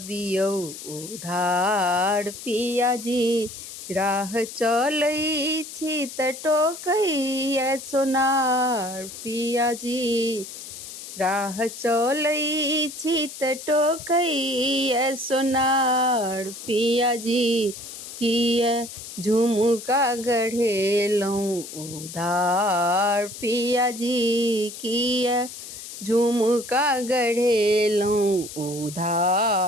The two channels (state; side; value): noise; left; hiss, 12 dB below the sound